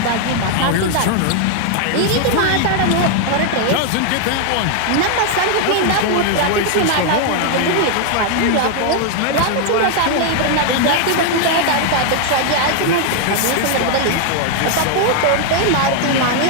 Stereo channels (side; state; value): both; different; correlation 0.00